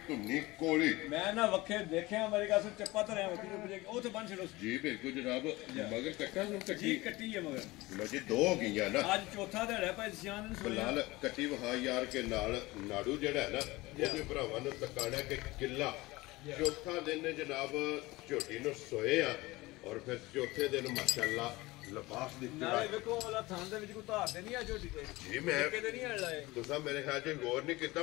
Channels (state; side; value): quieter; right; 20.7 dB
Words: ਧੁੰਨੀ ਕੋਲੀ ਮੈਂ ਨਾ ਵੱਖੇ ਦੇਖਿਆ ਮੇਰੇ ਕਾਸੋਂ ਚੱਪਾ ਧਰਿਆ ਵੱਖੀ ਨੂੰ ਪੁੱਜੇ ਉਹ ਤੇ ਬੰਨ ਛੜੋ ਜੀ ਬਿਲਕੁਲ ਜਨਾਬ ਮਗਰ ਕੱਟਾ ਨੂੰ ਕੱਟੀ ਹੈ ਮਗਰ ਲੋ ਜੀ ਦੋ ਹੋ ਗਈਆਂ ਨਾ ਅੱਜ ਚੌਥਾ ਦਿਹਾੜਾ ਭਾਈ ਸਿਆਨ ਨੂੰ ਬਲਾਲ ਕੱਟੀ ਵਹਾ ਯਾਰ ਕੇ ਨਾਲ ਨਾੜੂ ਜਿਹੜਾ ਹੈ ਨਾ ਉਹਦੇ ਭਰਾਵਾਂ ਨੂੰ ਤਕਾਣਾ ਕਿ ਕਿੱਲਾ ਚੌਥਾ ਦਿਨ ਜਨਾਬ ਝੋਟੀ ਨੂੰ ਸੋਏ ਆ ਔਰ ਫਿਰ ਚੌਥੇ ਦਿਨ ਮਾਸ਼ਾਅੱਲਾ ਲਿਬਾਸ ਦੀ ਨਾਲੇ ਵੇਖੋ ਵਾਲਾ ਥਾਂ ਦੇ ਵਿੱਚ ਕੋਈ ਧਾਰ ਤੇ ਨਹੀਂ ਆ ਝੋਟੀ ਤੇ ਜੀ ਮੈਂ ਕਿਤੇ ਨਹੀਂ ਹਲ ਲਾਏ ਤੁਸੀਂ ਮੇਰੇ ਖਿਆਲ 'ਚ ਗੌਰ ਨਹੀਂ